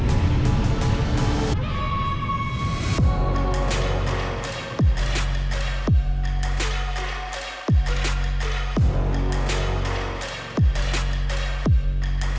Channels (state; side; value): identical; both; correlation 1.00